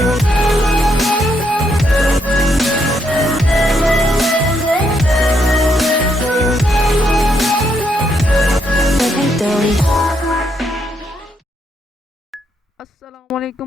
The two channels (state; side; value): normal; both; correlation 0.76